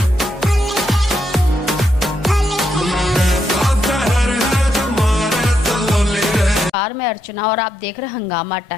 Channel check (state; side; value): normal; both; correlation 0.80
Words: मैं अर्चना और आप देख रहे हैं हंगामा